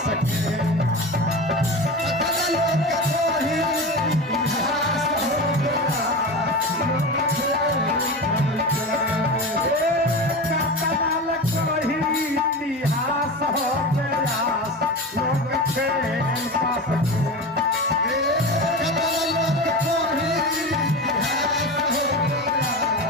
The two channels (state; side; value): normal; both; correlation 0.26